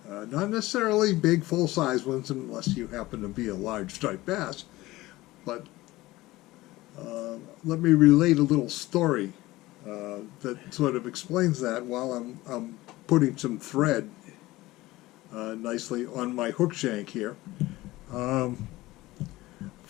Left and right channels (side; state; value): right; quieter; 18.5 dB